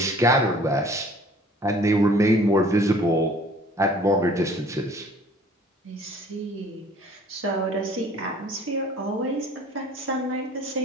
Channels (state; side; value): normal; both; correlation 0.52